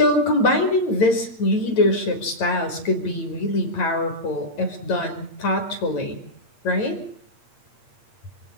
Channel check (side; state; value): right; late; 8.6 ms